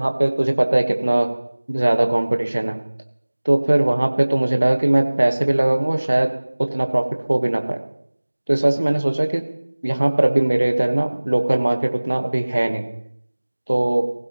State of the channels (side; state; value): both; inverted; correlation -1.00